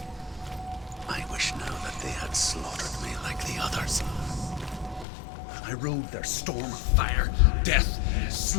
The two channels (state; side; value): drops out; right; at 5.1 s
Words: I wish now that they had slaughtered me like the others. I rode their storm of fire, death,